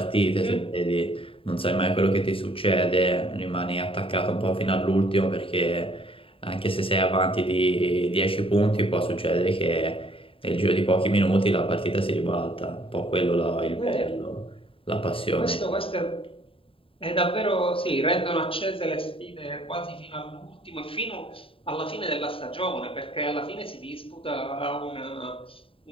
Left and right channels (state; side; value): late; right; 0.26 ms